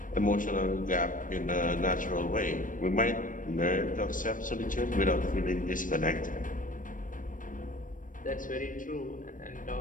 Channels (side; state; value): right; late; 0.38 ms